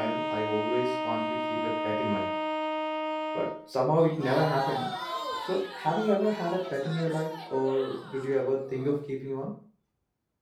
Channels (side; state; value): both; identical; correlation 1.00